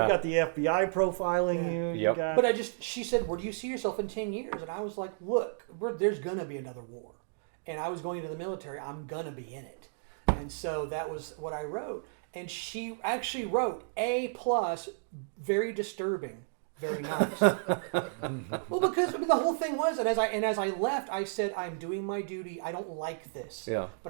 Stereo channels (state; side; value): silent; left; digital silence